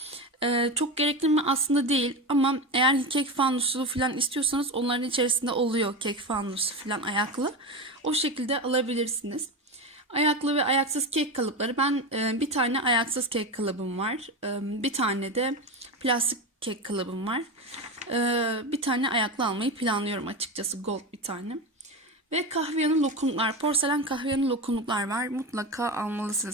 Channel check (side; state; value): both; normal; correlation 0.20